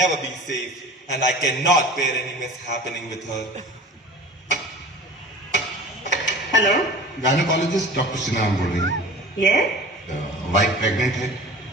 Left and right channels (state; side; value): normal; both; correlation 0.40